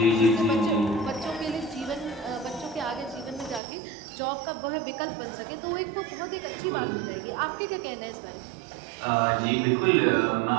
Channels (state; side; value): drops out; left; at 3.6 s